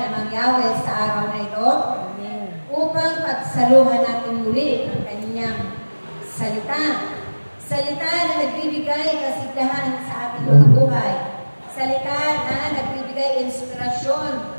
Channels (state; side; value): inverted; both; correlation -1.00